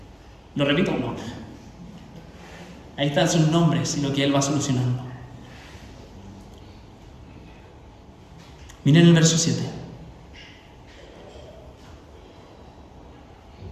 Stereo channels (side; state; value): both; identical; correlation 1.00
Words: ¿Lo repito? No. Ahí están sus nombres y lo que él va solucionando. Miren el verso 7.